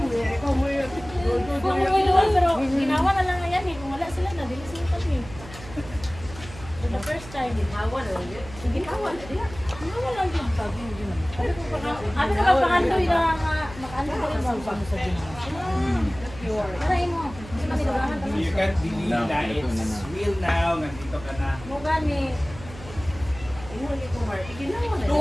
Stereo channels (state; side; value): noise; right; hum, 15 dB below the sound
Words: Pero ginawa na lang yan eh. Kung wala sila na, dili sila kami. For the first time. Ginawa na lang yun. Ginawa na lang. Ginawa lang yun. Ano na magpakandoy na makaano ko rin ba sa ginawa? Tarayin mo. Hindi man nilabangan ka You can't believe No, na ito na it's na. real now. Nandito ka na. mo gani.